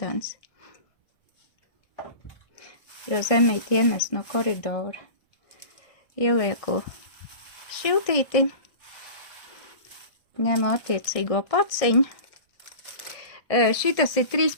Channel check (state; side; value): late; right; 1.6 ms